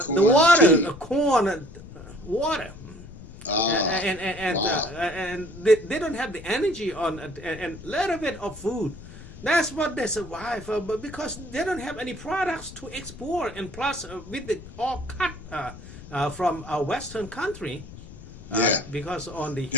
water, corn water, and they don't have the energy on and little bit of food. That's what they survive, but because they don't have any products to export, and plus with the all cut. From a Western country, because on the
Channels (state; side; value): noise; left; rumble, 16 dB below the sound